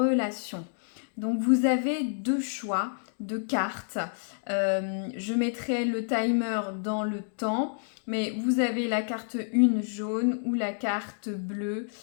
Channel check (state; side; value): silent; right; digital silence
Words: Donc vous avez deux choix de cartes. Je mettrai le timer dans le temps, mais vous avez la carte 1 jaune ou la carte bleue.